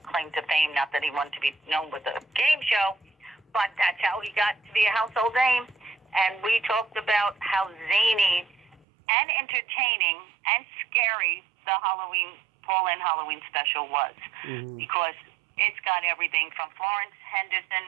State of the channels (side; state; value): left; drops out; at 8.8 s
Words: claim to fame. Not that he wanted to be known with a game show, but that's how he got to be a household name. And we talked about how zany and entertaining and scary the Paul and Halloween special was, because it's got everything from Florence Henderson